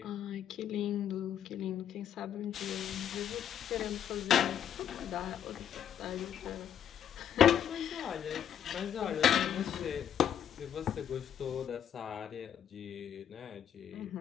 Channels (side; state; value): right; quieter; 9.3 dB